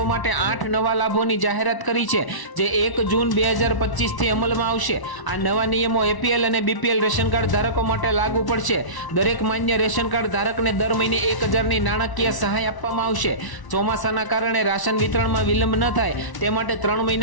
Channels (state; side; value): late; right; 1.0 ms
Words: માટે 8 નવા લાભોની જાહેરાત કરી છે, જે 1 જૂન 2025 થી અમલમાં આવશે। આ નવા નિયમો એપીએલ અને બીપીએલ રેશન કાર્ડ ધારકો માટે લાગુ પડશે। દરેક માન્ય રેશન કાર્ડ ધારકને દર મહિને 1000ની નાણાકીય સહાય આપવામાં આવશે। ચોમાસાના કારણે રાશન વિતરણમાં વિલંબ ન થાય તે માટે 3